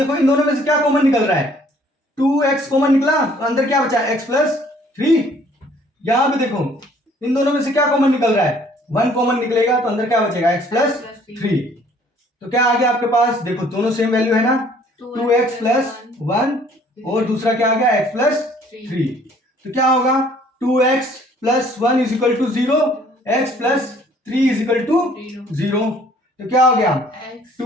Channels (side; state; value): both; normal; correlation 0.58